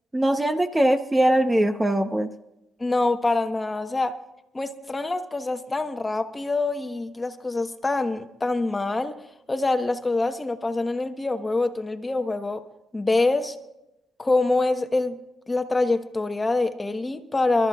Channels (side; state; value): both; normal; correlation 0.94